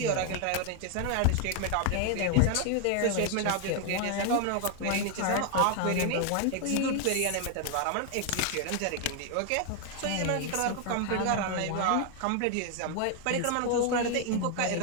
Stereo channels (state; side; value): different; both; correlation 0.00